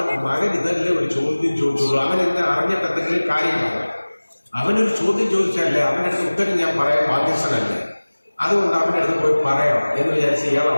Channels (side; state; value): both; inverted; correlation -1.00